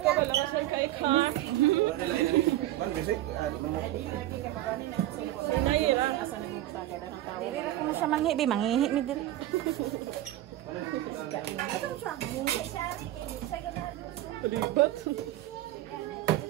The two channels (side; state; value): left; quieter; 14.5 dB